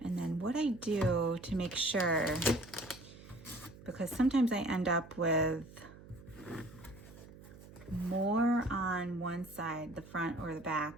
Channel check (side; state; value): right; noise; hum, 18 dB below the sound